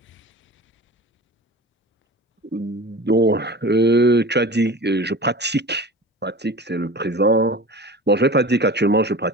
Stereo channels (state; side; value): normal; both; correlation 0.36